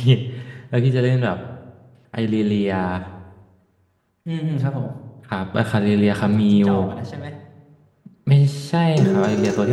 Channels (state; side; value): identical; both; correlation 1.00